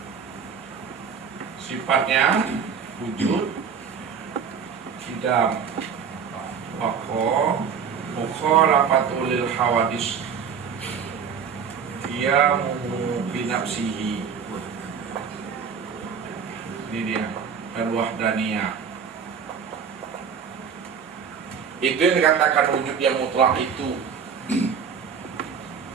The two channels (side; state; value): left; quieter; 6.7 dB